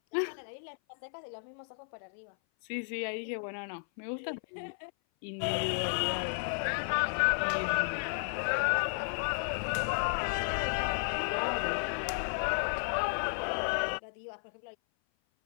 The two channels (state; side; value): silent; right; 56 dB below the other